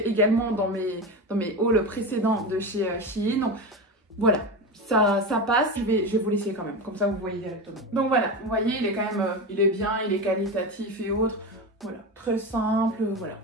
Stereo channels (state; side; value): normal; both; correlation 0.22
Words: également dans mes hauls précédents de chez Shein. Donc voilà, ça passe, je vais vous laisser quand même, comme ça vous voyez directement. Donc voilà, vous voyez, il est quand même, il est bien, il est qualitatif et autres. Voilà, très simple, voilà.